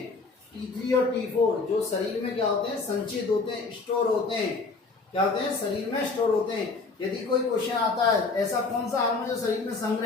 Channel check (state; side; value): quieter; right; 4.0 dB